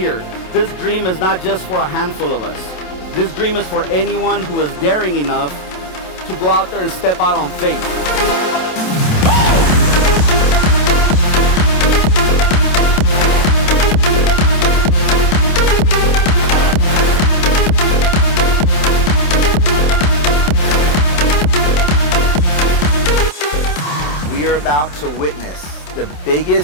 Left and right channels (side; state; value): right; late; 27 ms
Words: This dream is not just for a handful of us. This dream is for anyone who is daring enough to go out there and step out on faith. We are about to witness the